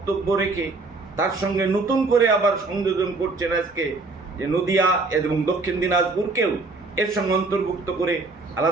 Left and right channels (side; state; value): left; quieter; 3.6 dB